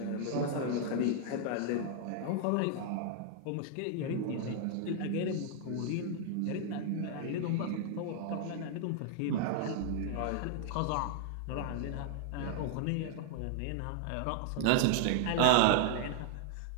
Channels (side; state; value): both; different; correlation -0.01